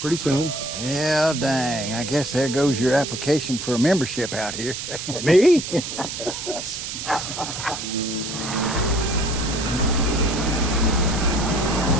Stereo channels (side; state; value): right; noise; hiss, 6 dB below the sound